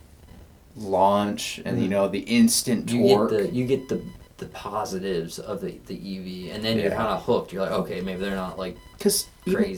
launch and the instant torque. You get the the positives of the EV, and then you're Yeah. kind of hooked. You're like, okay, maybe they're not like Because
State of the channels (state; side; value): identical; both; correlation 1.00